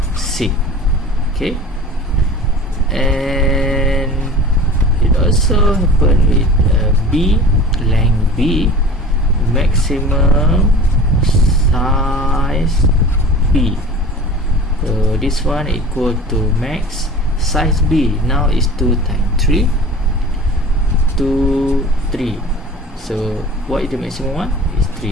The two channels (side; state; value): both; normal; correlation 0.39